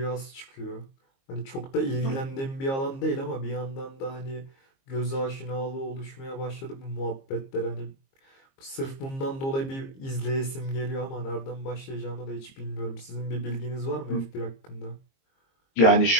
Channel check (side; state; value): right; late; 22 ms